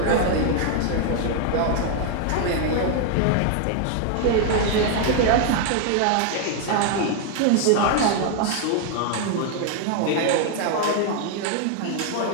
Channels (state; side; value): different; both; correlation 0.00